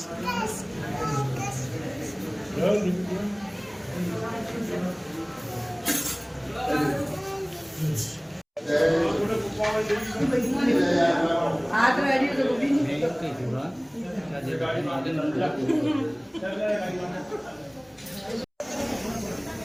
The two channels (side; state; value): both; identical; correlation 1.00